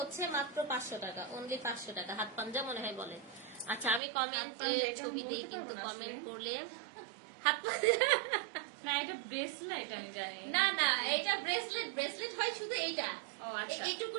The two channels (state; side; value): drops out; left; at 4.0 s